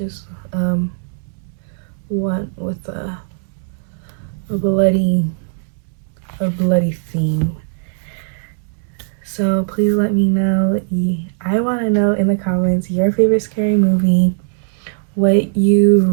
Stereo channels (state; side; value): silent; left; digital silence